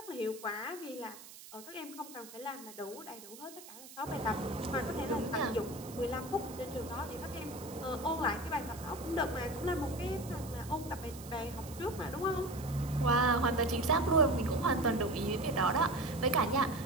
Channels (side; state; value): right; noise; hiss, 16 dB below the sound